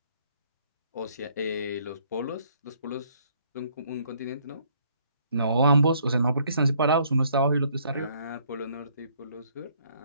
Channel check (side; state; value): both; inverted; correlation -0.65